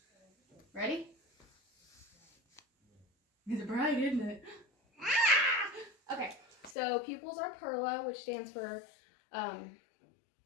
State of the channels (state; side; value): drops out; right; at 6.8 s